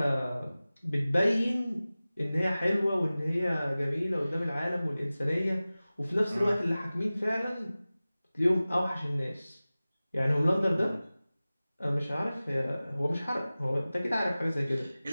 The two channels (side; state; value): both; inverted; correlation -0.97